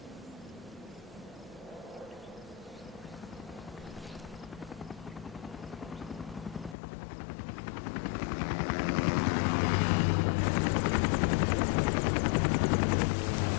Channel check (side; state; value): right; drops out; at 6.8 s